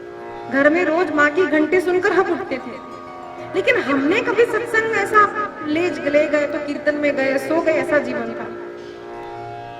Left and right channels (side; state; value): both; identical; correlation 1.00